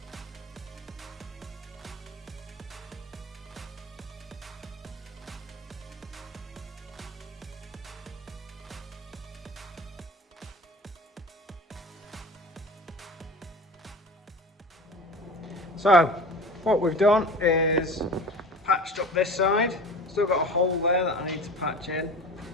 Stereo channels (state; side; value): normal; both; correlation 0.36